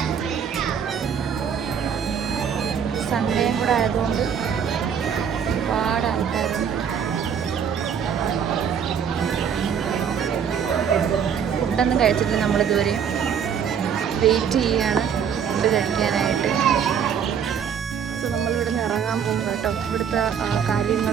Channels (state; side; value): quieter; left; 7.6 dB